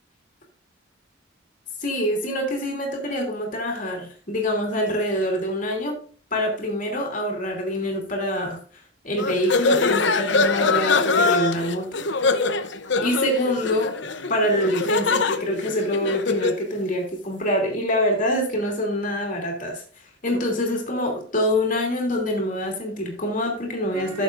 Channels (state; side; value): normal; both; correlation 0.05